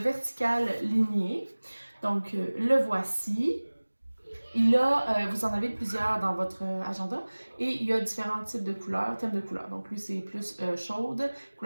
vertical ligné. Donc, le voici. Vous en avez plusieurs dans votre agenda et il y a différents types de couleurs, thèmes de couleurs. Donc, lui, c'est plus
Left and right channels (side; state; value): both; inverted; correlation -1.00